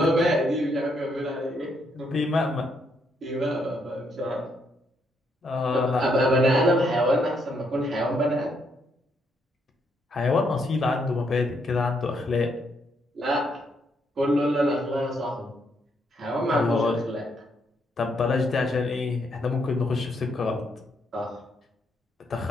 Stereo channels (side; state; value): both; normal; correlation 0.75